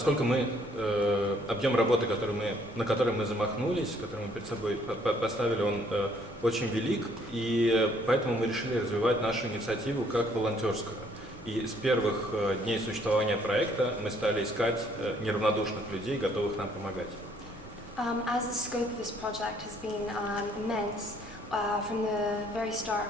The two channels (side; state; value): both; normal; correlation 0.64